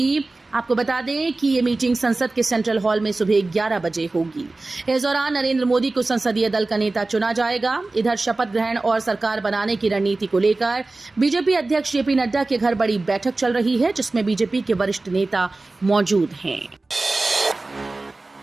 आपको बता दें कि ये मीटिंग संसद के सेंट्रल हॉल में सुबह 11 बजे होगी। इस दौरान नरेंद्र मोदी को संसदीय दल का नेता चुना जाएगा। इधर शपथ ग्रहण और सरकार बनाने की रणनीति को लेकर बीजेपी अध्यक्ष जेपी नड्डा के घर बड़ी बैठक चल रही है, जिसमें बीजेपी के वरिष्ठ नेता मौजूद हैं।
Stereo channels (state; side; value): quieter; left; 3.2 dB